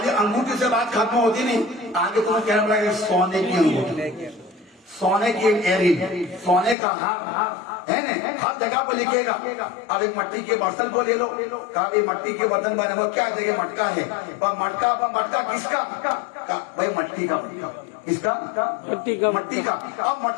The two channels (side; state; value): right; drops out; at 6.8 s